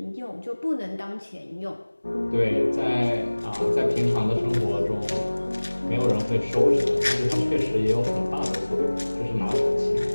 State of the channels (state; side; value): inverted; both; correlation -1.00